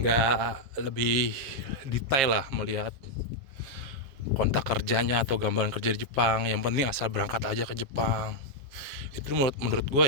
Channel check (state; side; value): late; left; 7.4 ms